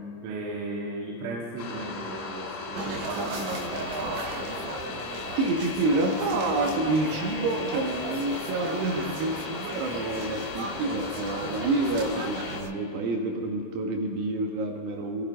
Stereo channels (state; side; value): late; left; 26 ms